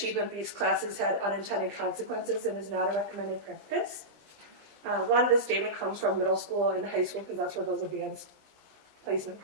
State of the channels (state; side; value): late; left; 20 ms